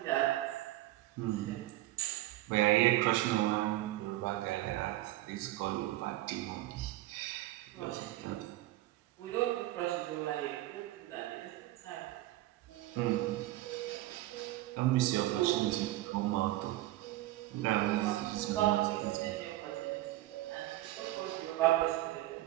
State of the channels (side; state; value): left; quieter; 16.6 dB